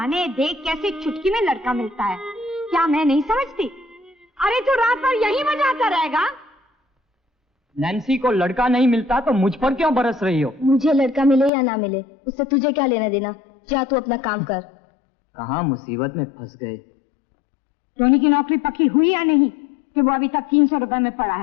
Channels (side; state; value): right; drops out; at 11.5 s